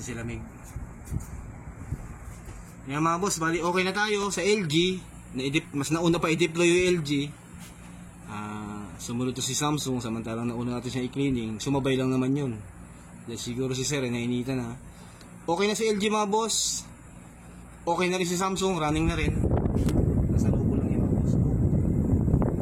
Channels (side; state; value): both; identical; correlation 1.00